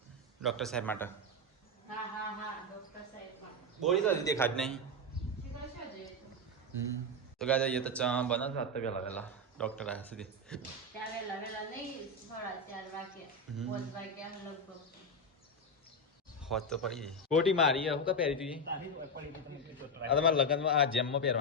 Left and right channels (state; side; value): normal; both; correlation 0.08